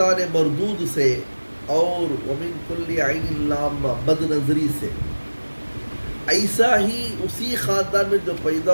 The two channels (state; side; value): inverted; both; correlation -1.00